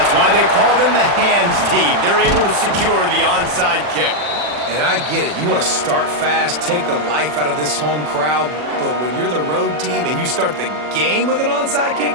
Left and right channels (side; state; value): left; late; 40 ms